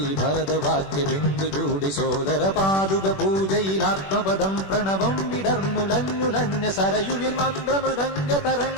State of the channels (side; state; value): right; late; 21 ms